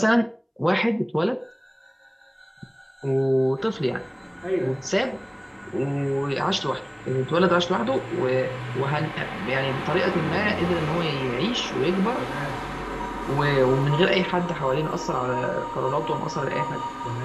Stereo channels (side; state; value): both; identical; correlation 1.00